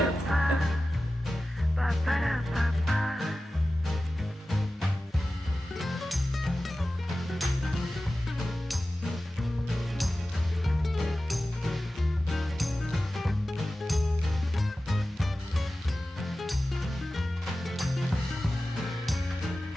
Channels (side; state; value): both; normal; correlation 0.95